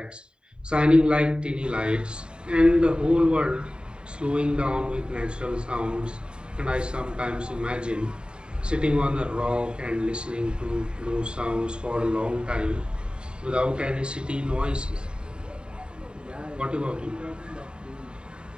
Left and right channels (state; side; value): late; left; 0.050 ms